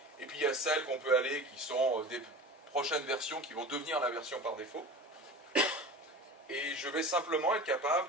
Et puis il y a celles qu'on peut aller, qui sont des prochaines versions qui vont devenir la version par défaut. Et je vais simplement être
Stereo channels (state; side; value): normal; both; correlation 0.36